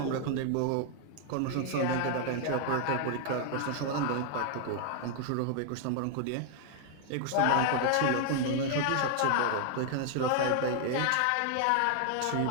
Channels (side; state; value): both; different; correlation 0.00